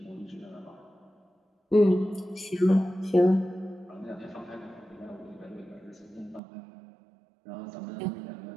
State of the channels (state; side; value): drops out; left; at 6.4 s